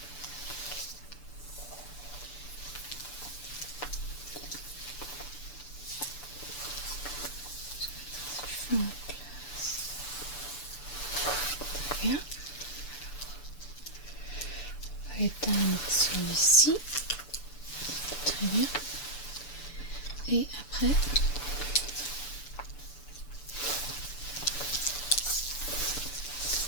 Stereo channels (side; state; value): right; late; 6.9 ms